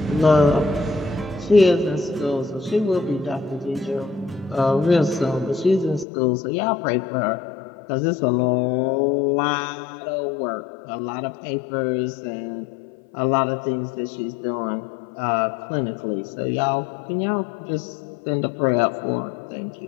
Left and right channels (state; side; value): drops out; right; at 6.1 s